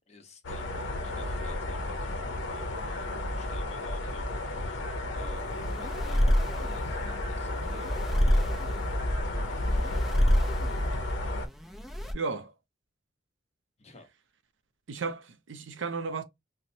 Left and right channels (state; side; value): normal; both; correlation 0.74